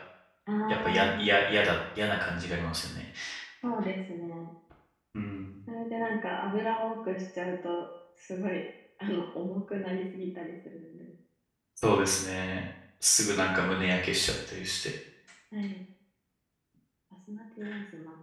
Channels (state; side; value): identical; both; correlation 1.00